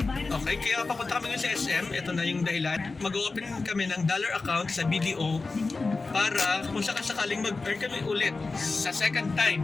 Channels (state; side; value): quieter; right; 3.8 dB